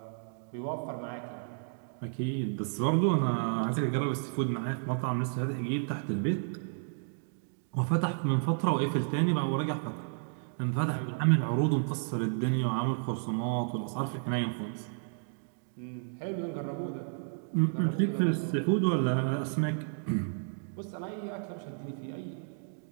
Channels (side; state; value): left; silent; digital silence